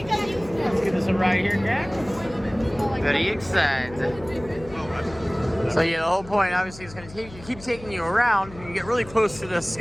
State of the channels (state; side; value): noise; left; hum, 18 dB below the sound